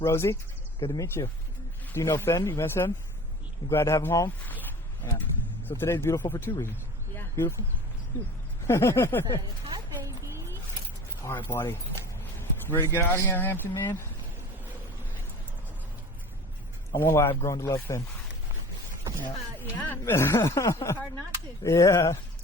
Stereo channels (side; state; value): both; normal; correlation 0.40